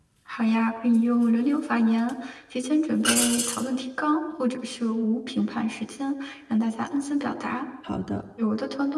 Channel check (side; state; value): both; identical; correlation 1.00